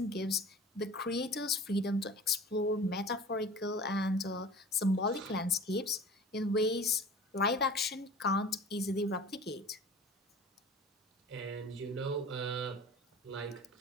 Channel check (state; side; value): normal; both; correlation 0.40